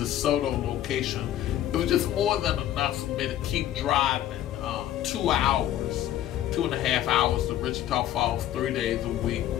location, it was just more than enough for me to keep driving 2 hours, 2.5 hours to Wichita Falls 3 days a week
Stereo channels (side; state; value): right; quieter; 12.4 dB